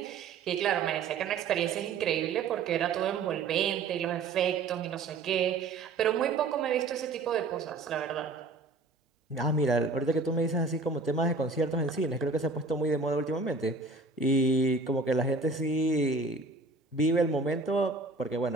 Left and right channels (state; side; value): quieter; left; 3.8 dB